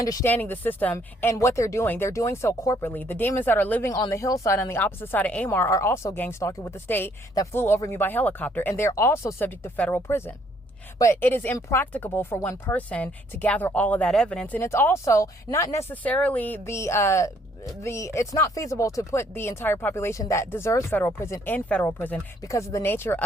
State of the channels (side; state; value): both; normal; correlation 0.66